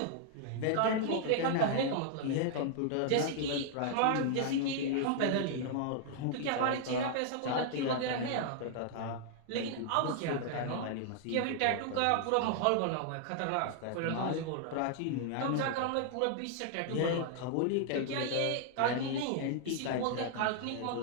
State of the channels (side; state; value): both; different; correlation -0.01